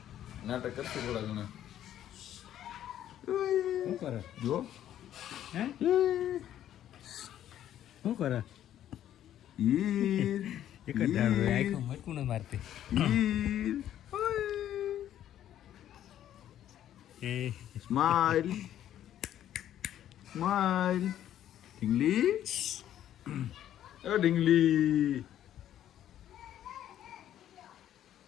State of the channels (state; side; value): quieter; right; 11.4 dB